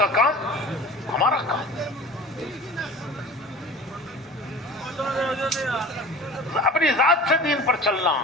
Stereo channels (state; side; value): normal; both; correlation 0.40